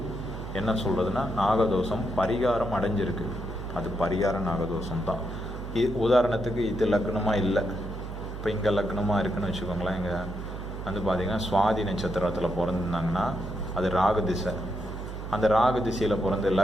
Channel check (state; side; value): noise; right; hum, 8 dB below the sound